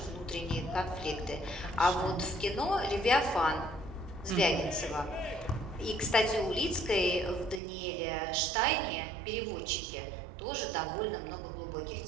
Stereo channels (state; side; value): drops out; left; at 7.6 s